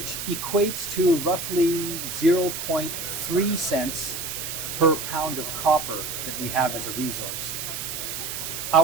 equates to roughly 0.3 cents per pound of copper that we have as a resource.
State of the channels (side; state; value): right; noise; hiss, 5 dB below the sound